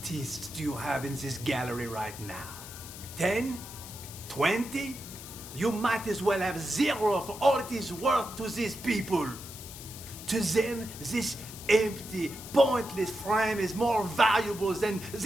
do you have in this gallery right now? 10? 20? You might as well have 0 for all it is worth to these people. To them, this empty, pointless frame is more valuable than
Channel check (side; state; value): left; noise; hiss, 13 dB below the sound